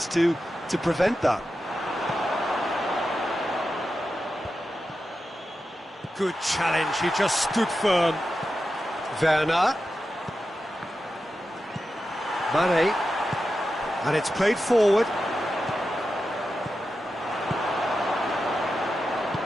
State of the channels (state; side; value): normal; both; correlation 0.90